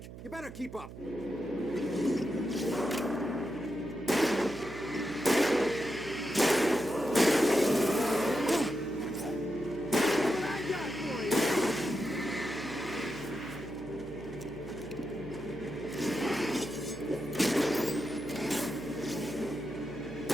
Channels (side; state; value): right; noise; hum, 13 dB below the sound